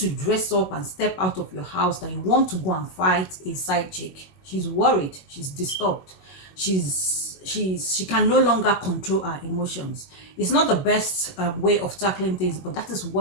dress up and step out of your house that you want to go and fight a side chick, she's worried, she's disturbed, she can no longer control her emotions. It's not the best way of tackling things, but that is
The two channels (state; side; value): late; right; 21 ms